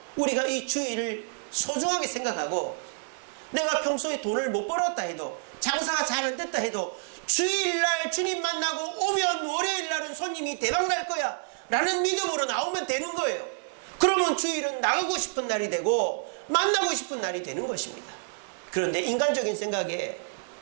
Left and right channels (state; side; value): silent; left; digital silence